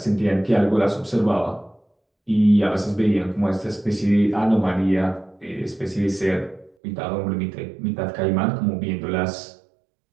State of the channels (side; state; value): left; drops out; at 6.7 s